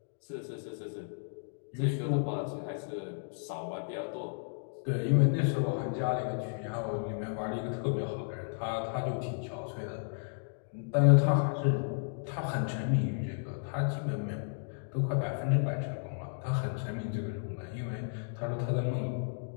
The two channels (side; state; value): right; silent; digital silence